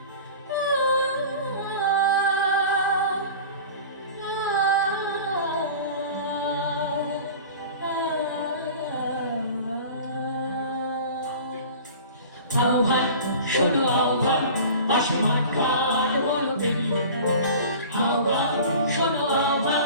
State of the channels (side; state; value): both; inverted; correlation -0.40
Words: আহ্বান শোনো আহ্বান আসমান কার বলো বেরিয়ে। আহ্বান শোনো